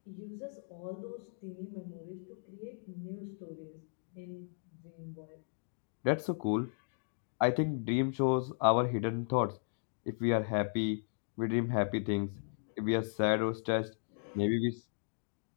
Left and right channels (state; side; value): silent; right; digital silence